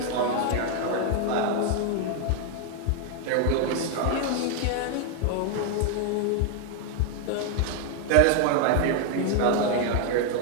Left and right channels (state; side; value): different; both; correlation 0.00